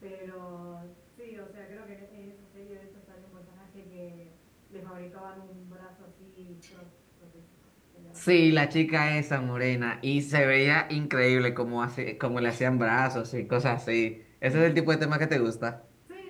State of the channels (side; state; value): both; identical; correlation 1.00